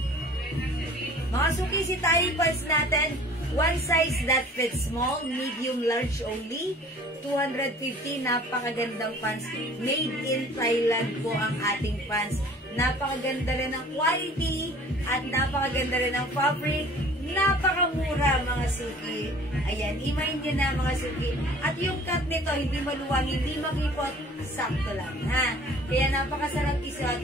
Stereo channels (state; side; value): normal; both; correlation 0.49